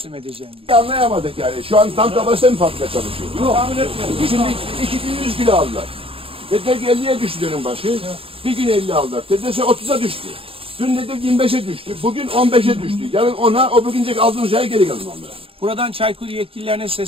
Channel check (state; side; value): late; left; 0.27 ms